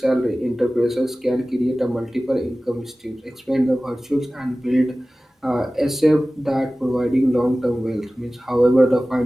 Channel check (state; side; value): normal; both; correlation 0.97